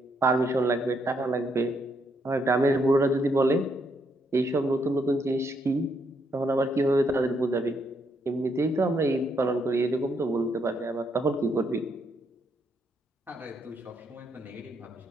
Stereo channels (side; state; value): both; normal; correlation 0.75